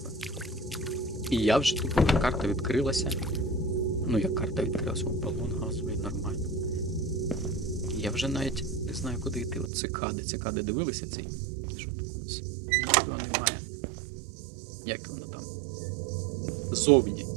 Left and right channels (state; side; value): drops out; left; at 9.7 s